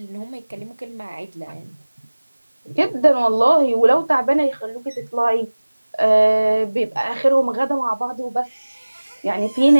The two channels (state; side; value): inverted; both; correlation -1.00